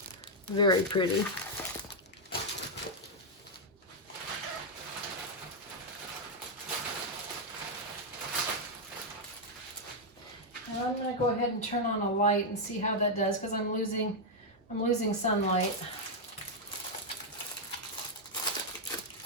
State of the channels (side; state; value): both; normal; correlation -0.01